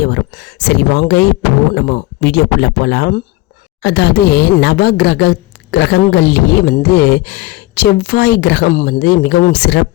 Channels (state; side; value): quieter; right; 19.7 dB